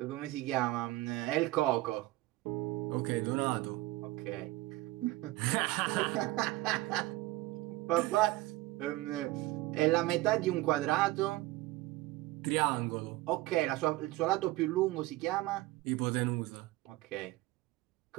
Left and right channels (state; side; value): quieter; left; 18.7 dB